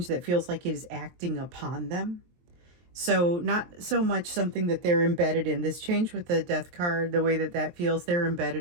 that feels like it is acting upon them. So not so much something that they're embedded in. This change with the death card, the way that that feels, they're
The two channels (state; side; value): late; left; 23 ms